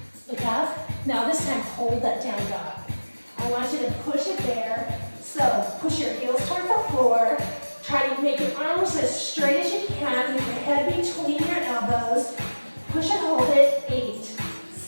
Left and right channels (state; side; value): inverted; both; correlation -1.00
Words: Look up. Now this time, hold that down dog. I want you to push it there. So push your heels toward the floor. Try to make your arms as straight as you can with your head between your elbows. Push and hold it. 8,